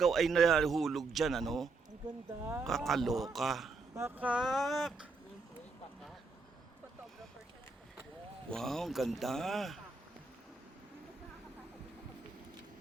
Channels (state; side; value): quieter; left; 3.9 dB